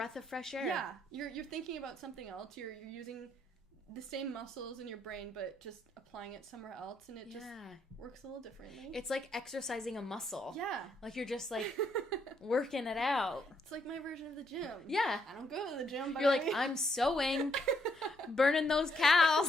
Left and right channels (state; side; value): normal; both; correlation 0.73